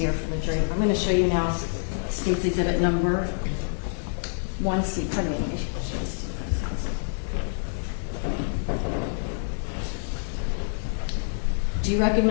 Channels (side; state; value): right; silent; 56 dB below the other